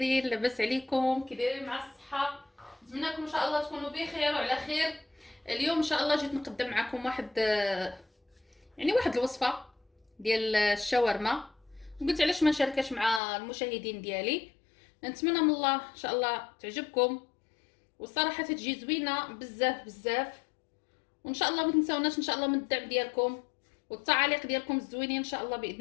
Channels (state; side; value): drops out; right; at 13.2 s